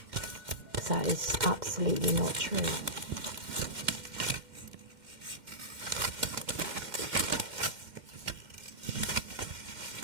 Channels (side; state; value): left; late; 2.1 ms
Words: Because that is absolutely not true.